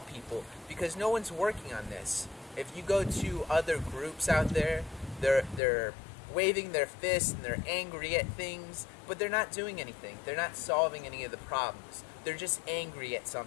because no one's working on this. If you go to other groups out there, they're waving their fists and they're angry at things, but they're not doing anything. They're not solving any of the problems. They're just angry at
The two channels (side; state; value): right; drops out; at 5.6 s